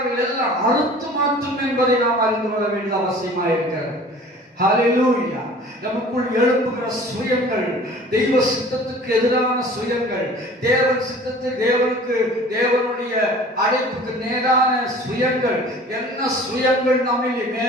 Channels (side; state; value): both; normal; correlation 0.46